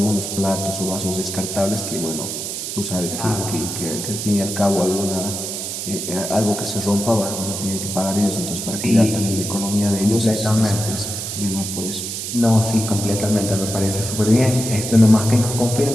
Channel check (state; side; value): noise; right; hiss, 5 dB below the sound